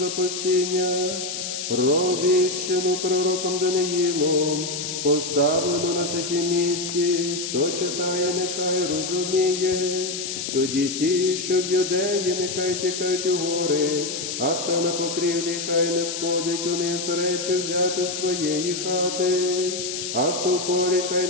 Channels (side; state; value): left; noise; hiss, 5 dB below the sound